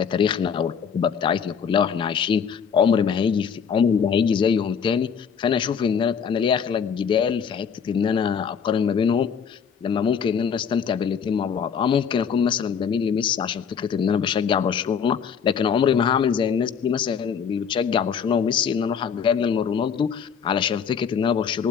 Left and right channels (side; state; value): right; quieter; 6.9 dB